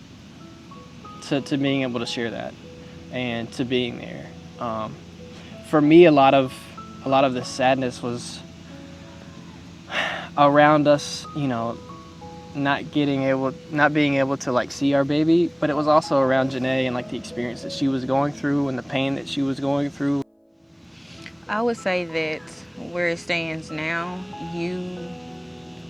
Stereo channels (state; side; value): identical; both; correlation 1.00